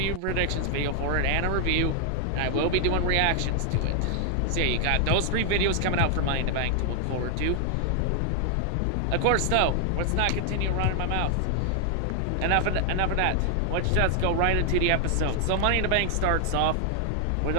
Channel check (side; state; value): both; different; correlation 0.00